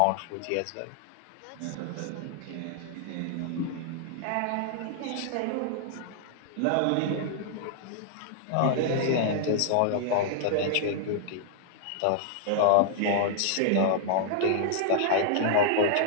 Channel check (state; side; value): different; both; correlation -0.01